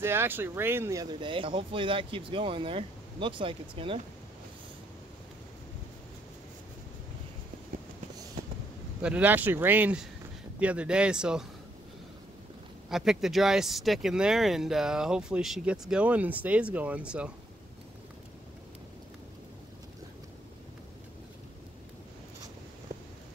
it actually rained the other day. Hopefully that keeps going there. Looks like it's gonna. But it actually rained the other day, so I picked the driest stick in there, and hopefully she gets going and stays going. So.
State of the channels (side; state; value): both; normal; correlation 0.72